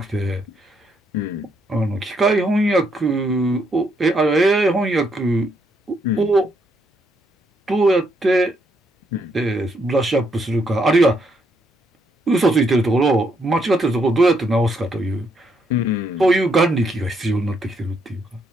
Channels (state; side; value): normal; both; correlation 0.75